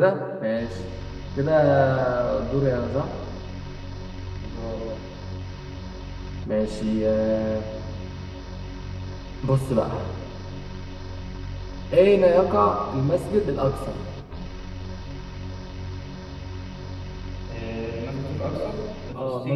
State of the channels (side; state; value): both; identical; correlation 1.00